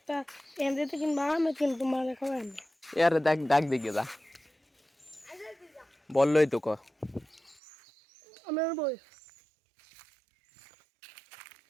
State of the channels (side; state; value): left; drops out; at 7.6 s